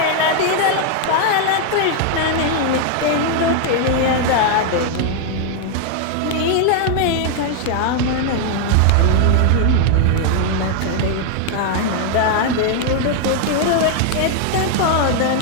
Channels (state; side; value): different; both; correlation 0.00